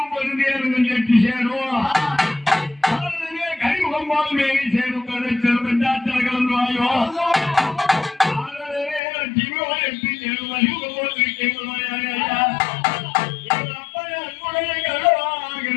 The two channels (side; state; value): right; drops out; at 9.0 s